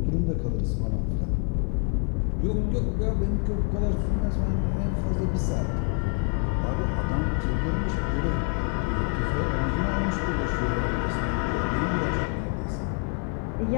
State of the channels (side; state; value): right; quieter; 37.2 dB